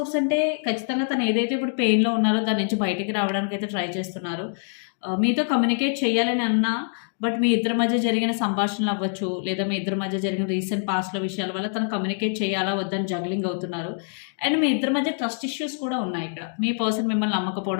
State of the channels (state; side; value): silent; right; digital silence